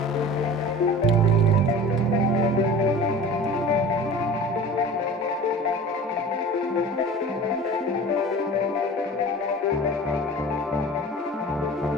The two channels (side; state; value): both; normal; correlation 0.39